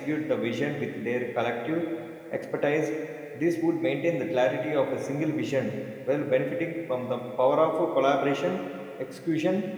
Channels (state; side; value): identical; both; correlation 1.00